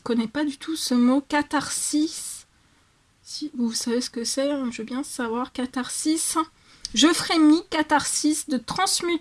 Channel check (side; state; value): both; identical; correlation 1.00